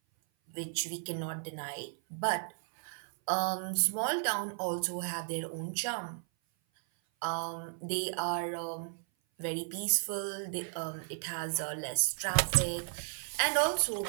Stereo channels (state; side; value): silent; left; 55 dB below the other